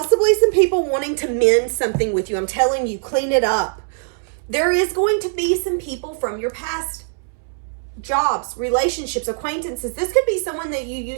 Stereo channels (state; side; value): silent; left; 65 dB below the other